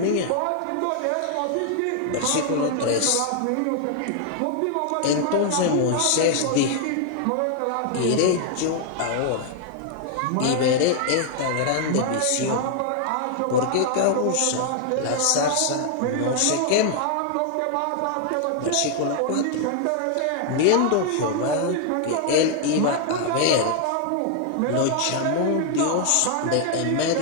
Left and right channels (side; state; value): both; different; correlation 0.00